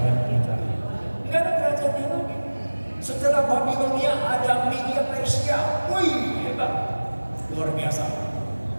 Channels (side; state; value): both; inverted; correlation -1.00